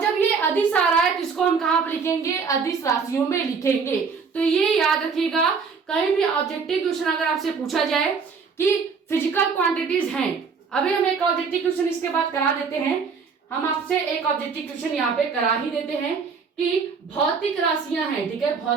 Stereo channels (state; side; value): quieter; left; 5.4 dB